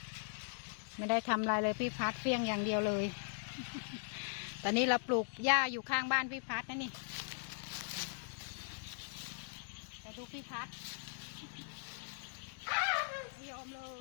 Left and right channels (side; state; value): right; silent; digital silence